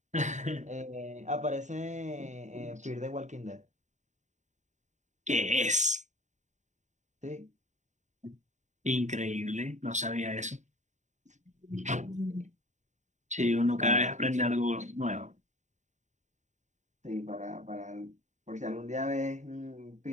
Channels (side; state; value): left; late; 0.35 ms